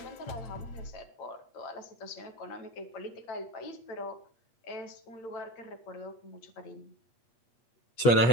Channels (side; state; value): right; late; 8.4 ms